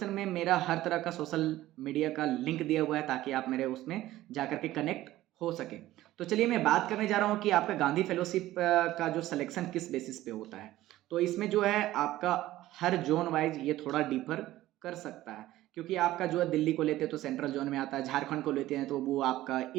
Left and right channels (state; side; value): quieter; left; 15.5 dB